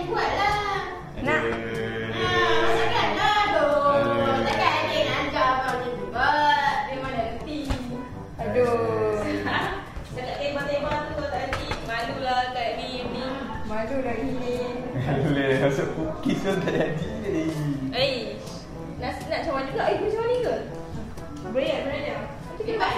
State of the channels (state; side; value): identical; both; correlation 1.00